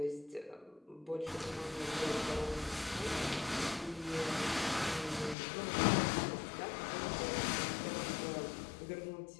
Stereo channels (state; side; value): drops out; right; at 5.4 s